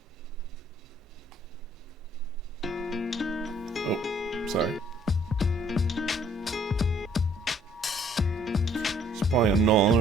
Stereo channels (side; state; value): both; normal; correlation 0.61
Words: Oh, sorry. It's probably a